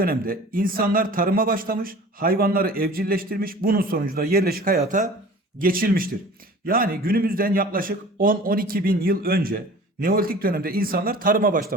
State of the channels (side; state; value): both; normal; correlation 0.43